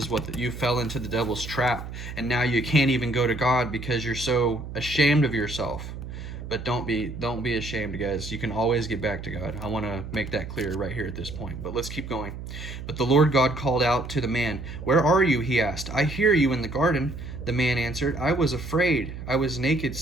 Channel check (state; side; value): noise; right; hum, 9 dB below the sound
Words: what you fell into the devil's trap. And now you can't even go to God because you're so ashamed of yourself. But don't be ashamed, guys. You can always get back to God. I want to make that clear right here at this point. But let's keep going. But the Lord God called out to the man. "Where are you?" he asked. "I hear you in the garden." The man answered, "I was afraid. I was naked,